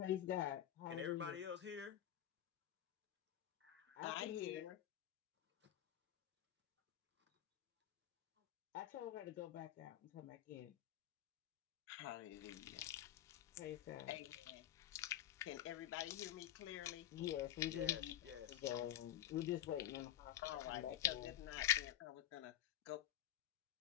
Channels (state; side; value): quieter; right; 11.7 dB